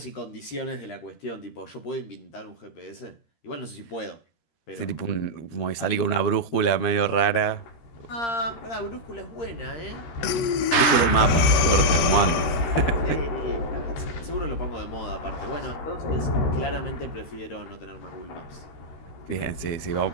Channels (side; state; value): right; late; 14 ms